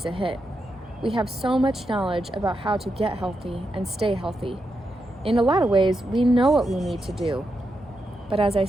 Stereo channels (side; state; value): both; normal; correlation 0.85